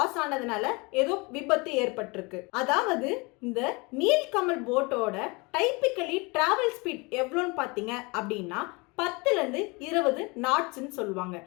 ஆனதுனால ஏதோ விபத்து ஏற்பட்டிருக்கு. அதாவது இந்த நீல்கமல் போட்டோட டைப்பிக்கலி டிராவல் ஸ்பீட் எவ்வளோன்னு பார்த்தீங்க அப்படின்னா 10லேருந்து 20 நாட்ஸ்ன்னு சொல்லுவாங்க.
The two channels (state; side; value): quieter; right; 27.4 dB